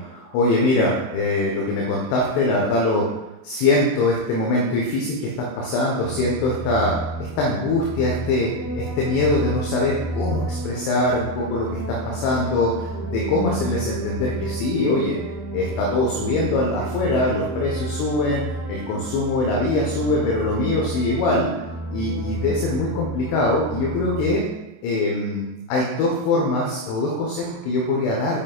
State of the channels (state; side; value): late; right; 23 ms